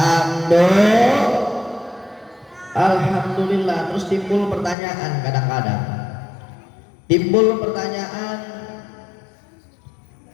Alhamdulillah. Terus timbul pertanyaan, kadang-kadang timbul pertanyaan,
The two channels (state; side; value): drops out; right; at 4.8 s